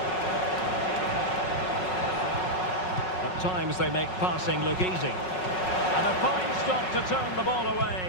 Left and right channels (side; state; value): right; late; 5.4 ms